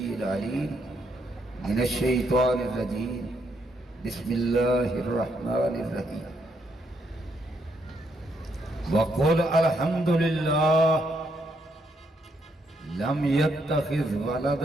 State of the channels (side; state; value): both; normal; correlation 0.75